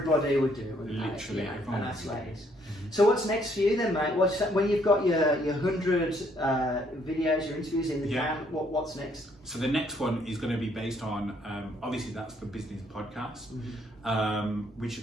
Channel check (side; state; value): both; normal; correlation 0.67